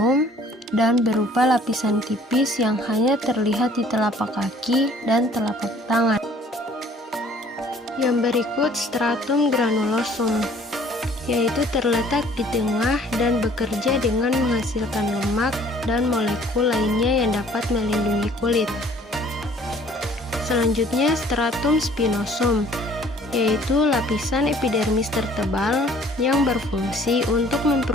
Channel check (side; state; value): both; normal; correlation 0.55